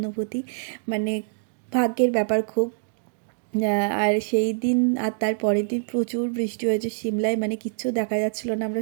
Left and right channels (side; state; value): left; silent; digital silence